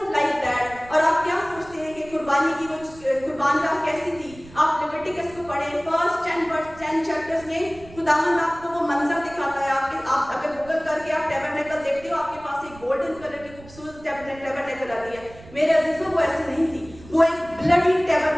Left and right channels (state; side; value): noise; right; rumble, 20 dB below the sound